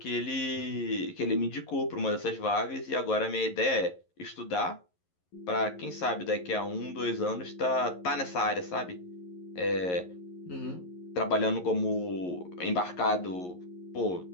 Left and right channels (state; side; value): late; right; 11 ms